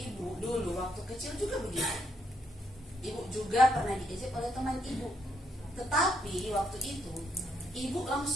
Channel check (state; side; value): normal; both; correlation 0.75